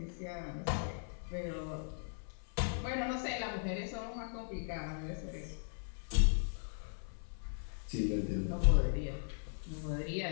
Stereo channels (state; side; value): silent; right; 52 dB below the other